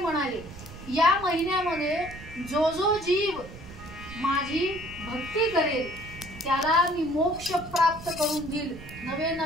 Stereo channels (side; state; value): right; noise; rumble, 15 dB below the sound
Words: म्हणाले, या महिन्यामध्ये जो जो जीव माझी भक्ती करेल त्याला मी मोक्ष प्राप्त करून देईल, नवे